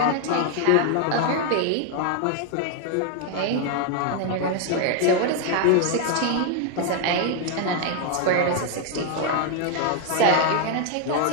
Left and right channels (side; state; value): both; different; correlation 0.00